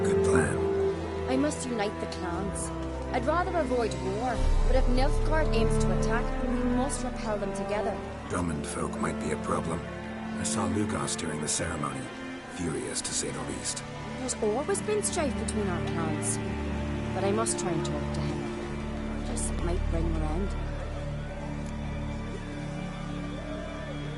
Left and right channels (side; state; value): both; identical; correlation 1.00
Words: Good plan. I must unite the clans. I'd rather avoid war, but if Nilfgaard aims to attack, we must repel them together. Drummond folk might be a problem. I saw Lugos during the ceremony. Furious, to say the least. There's always been strife between our clans. But I must try and talk to him. Just might bring him around.